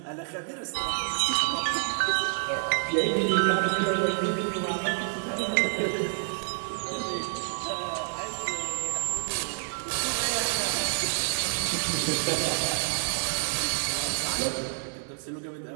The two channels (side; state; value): left; silent; 59 dB below the other